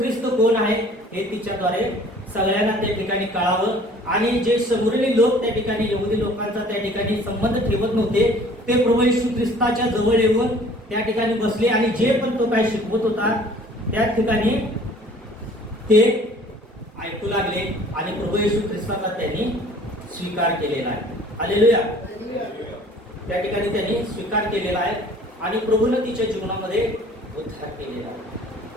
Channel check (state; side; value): normal; both; correlation 0.52